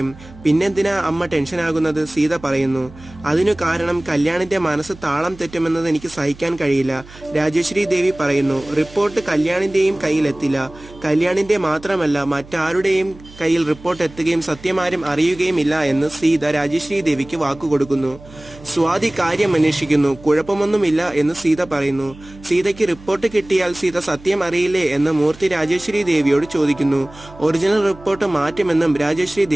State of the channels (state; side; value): noise; right; hum, 20 dB below the sound